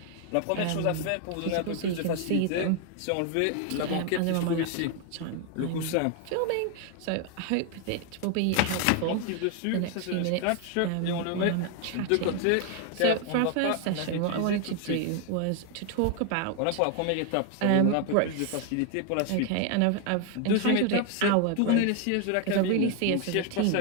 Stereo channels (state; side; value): different; both; correlation 0.01